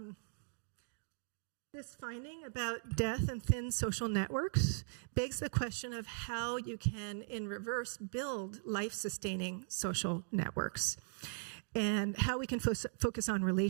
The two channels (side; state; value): left; silent; digital silence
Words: this finding about death and thin social networks begs the question of how you can, in reverse, build life-sustaining social networks, and how we can focus on